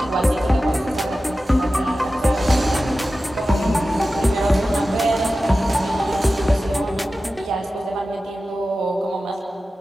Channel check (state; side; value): normal; both; correlation 0.94